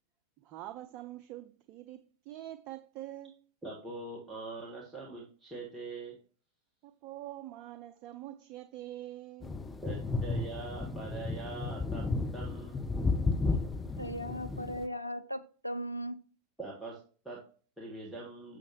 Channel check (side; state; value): both; normal; correlation 0.43